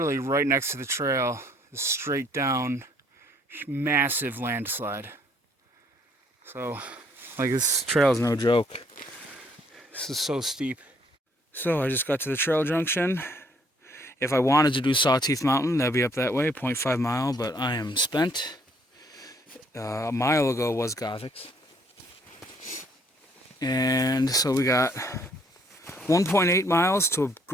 right next to the trail is straight down, massive landslide. So, like, this trail is no joke. This is so steep. So I just got to the trail junction. If I wanted to do Sawtooth Mountain, that'd be up that way, 0.5 mile, but I am spent. A mile ago was Gothic's. And so we got 1.8 miles to a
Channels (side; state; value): both; normal; correlation 0.65